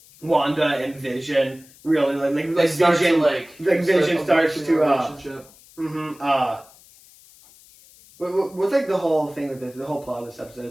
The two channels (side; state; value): left; noise; hiss, 25 dB below the sound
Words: Wanda and Vision really like Vision Vision starts to what's like the whole thing with this, the whole plot of this